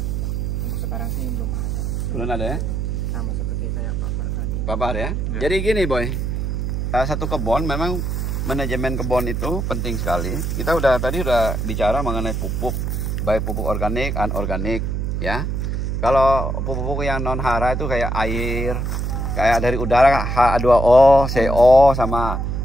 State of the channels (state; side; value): noise; right; hum, 1 dB below the sound